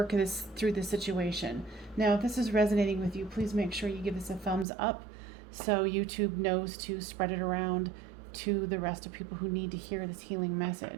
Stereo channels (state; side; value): drops out; left; at 4.7 s